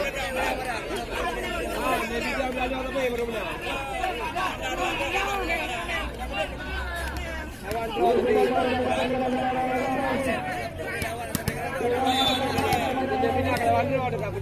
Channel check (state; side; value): identical; both; correlation 1.00